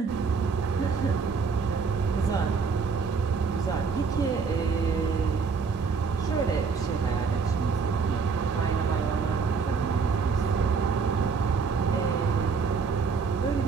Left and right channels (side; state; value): left; quieter; 5.2 dB